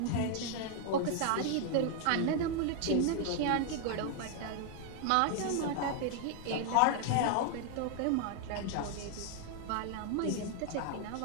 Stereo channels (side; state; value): both; different; correlation 0.00